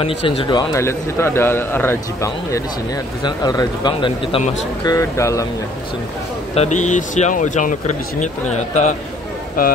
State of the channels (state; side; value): normal; both; correlation 0.59